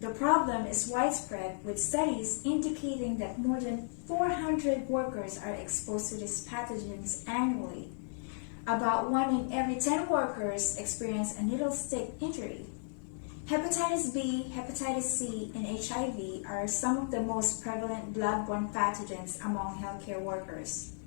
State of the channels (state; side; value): silent; right; digital silence